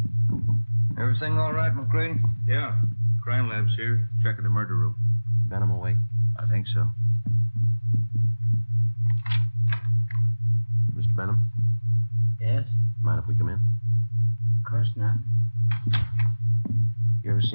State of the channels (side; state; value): both; inverted; correlation -1.00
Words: Everything all right, McCready? Yeah. Crime lab's here, checking the murder room. Benham awake? I think so. Mr. Benham? Yes? Mind if we come in? Of course not. You ever